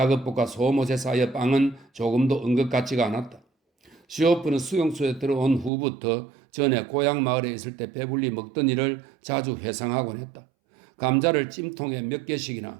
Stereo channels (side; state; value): left; drops out; at 5.7 s